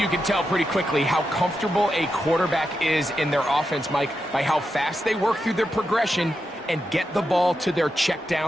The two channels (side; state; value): both; normal; correlation 0.87